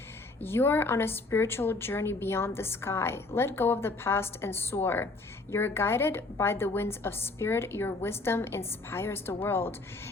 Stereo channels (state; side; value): quieter; right; 3.4 dB